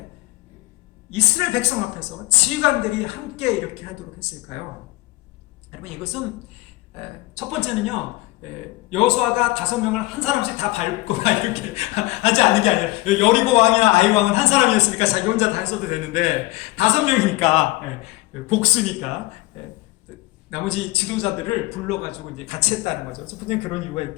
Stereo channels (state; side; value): quieter; right; 19.6 dB